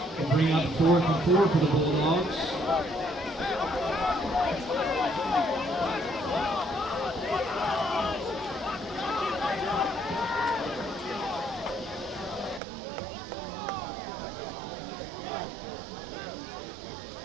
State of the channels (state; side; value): drops out; left; at 12.6 s